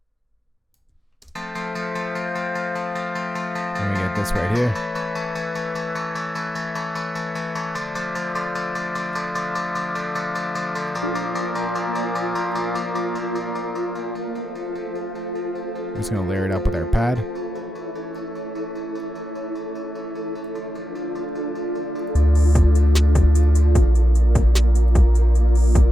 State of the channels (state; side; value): normal; both; correlation 0.89